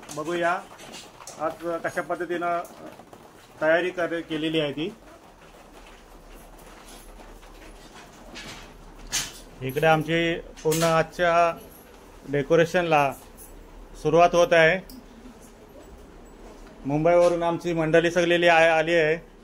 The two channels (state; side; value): identical; both; correlation 1.00